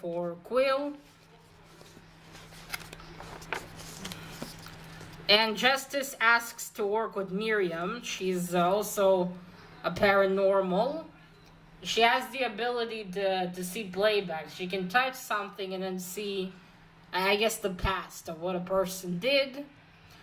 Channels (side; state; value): both; identical; correlation 1.00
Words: Quill. And Justice asks to work with Miriam. She's also a paranormal. She has the ability to see playback. She can touch something and then see, I guess, the past of what a person did.